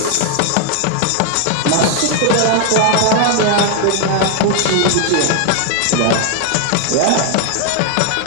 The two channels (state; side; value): different; both; correlation 0.00